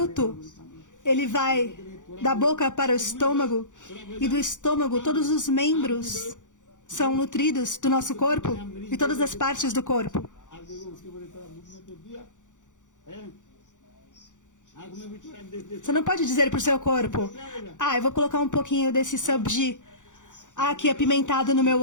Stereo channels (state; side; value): late; right; 0.86 ms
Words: ele vai da boca para o estômago, e do estômago todos os membros são nutridos do nosso corpo e todas as partes do corpo. आप देखो उसके बड़े थोड़ा मुख में तो दिया है आग में भी थोड़ा देख देख Você não pode dizer para o seu corpo: eu vou colocar um pouquinho desse sabji aqui apimentado no meu